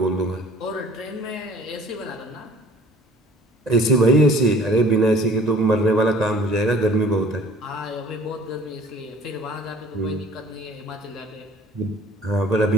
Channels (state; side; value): normal; both; correlation 0.50